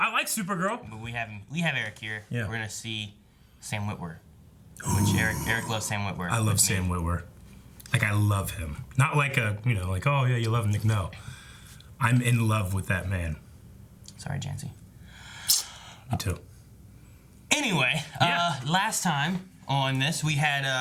like Supergirl. But we have Eric here. Yeah. We're gonna see Sam Witwer. Which Eric loves Sam Witwer. I love Sam Witwer. Like, I love him. Not like a, like, oh, yeah, you love him. No. I'm in love with that man. Sorry, Jancy. Me too. Anyway, last time on this, we had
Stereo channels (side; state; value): both; identical; correlation 1.00